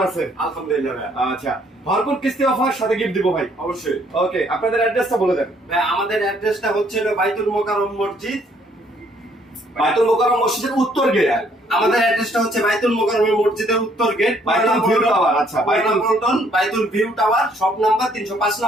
আছেন? আলহামদুলিল্লাহ ভাই। আচ্ছা, ভরপুর কিস্তি অফার সাথে গিফট দিব ভাই। অবশ্যই ওকে, আপনাদের অ্যাড্রেসটা বলে দেন। ভাই, আমাদের অ্যাড্রেসটা হচ্ছে বাইতুল মোকাররম মসজিদ। বাইতুল মোকাররম মসজিদের উত্তর গেট। আমাদের অ্যাড্রেসটা হচ্ছে বাইতুল মোকাররম মসজিদের উত্তর গেট, বাইতুল ভিউ টাওয়ার। আচ্ছা, বাইতুল view tower, shop number 305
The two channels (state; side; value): normal; both; correlation 0.66